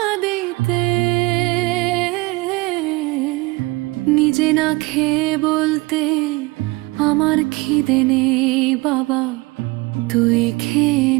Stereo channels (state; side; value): quieter; left; 23.4 dB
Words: দিতে, নিজে না খেয়ে বলতে আমার খিদে নেই বাবা, তুই খেয়ে